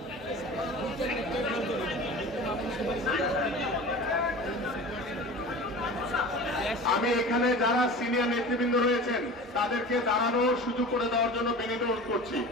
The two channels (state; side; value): normal; both; correlation 0.37